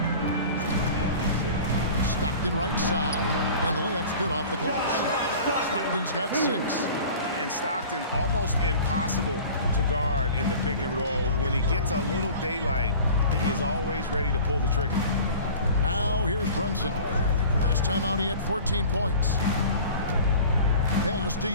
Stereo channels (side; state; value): both; inverted; correlation -0.41